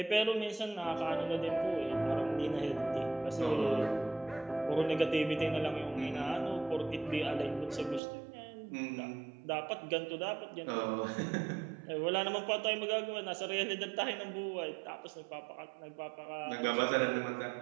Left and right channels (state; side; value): drops out; left; at 8.0 s